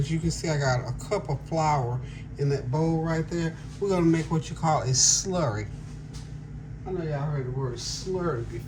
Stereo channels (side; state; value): both; identical; correlation 1.00